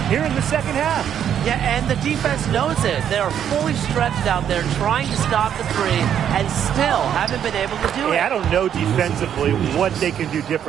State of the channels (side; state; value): left; quieter; 9.3 dB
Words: here in the second half. Yeah, and the defense knows it. They are fully stretched out there trying to stop the three and still haven't been able to do it. I don't know defensively what they can do